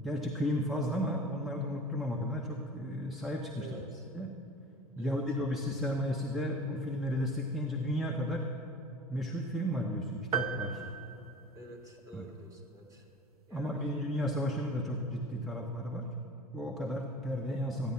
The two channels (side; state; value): both; normal; correlation 0.40